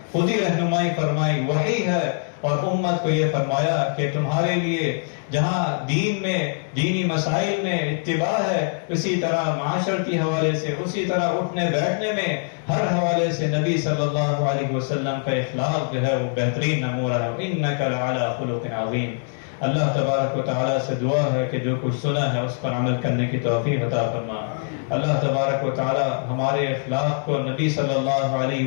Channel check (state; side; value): silent; right; 63 dB below the other